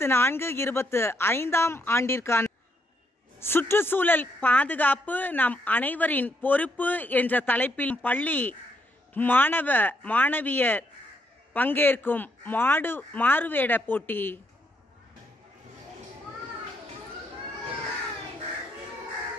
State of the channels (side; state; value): both; normal; correlation 0.76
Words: ஆண்டிற்கான சுற்றுச்சூழல் பாதுகாப்பு நம் அனைவரின் பொறுப்பு என்ற தலைப்பில் பள்ளி மாணவ மாணவியர் பங்கேற்கும் மாறுவேட போட்டி.